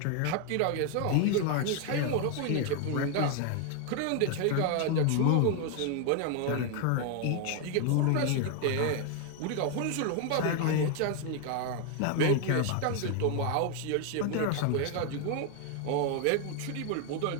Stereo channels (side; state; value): both; different; correlation 0.01